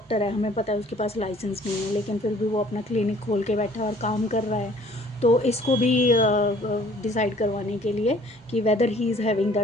है, हमें पता है उसके पास लाइसेंस नहीं है, लेकिन फिर भी वो अपना क्लिनिक खोल के बैठा है और काम कर रहा है, तो इसको भी डिसाइड करवाने के लिए कि whether he is having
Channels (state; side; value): normal; both; correlation 0.56